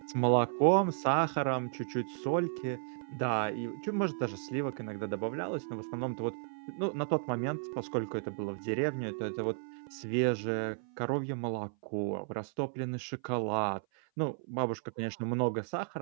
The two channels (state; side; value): silent; left; 55 dB below the other